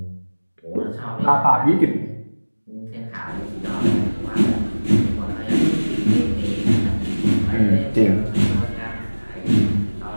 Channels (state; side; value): inverted; both; correlation -1.00